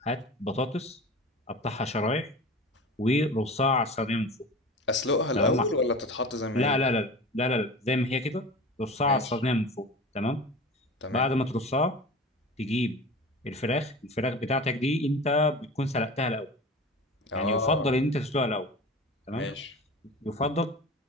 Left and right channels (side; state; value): both; normal; correlation 0.34